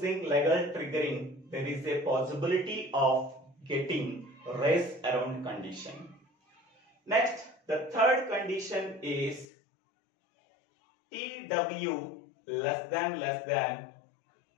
level triggering, there is a possibility of getting race around condition. Next, the third condition is TW less than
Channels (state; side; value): drops out; right; at 9.5 s